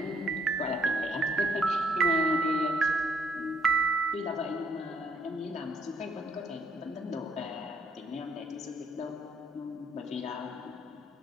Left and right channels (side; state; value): both; normal; correlation 0.67